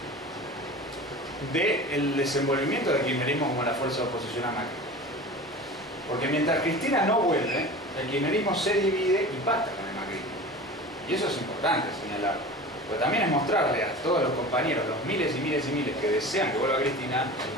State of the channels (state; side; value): normal; both; correlation 0.35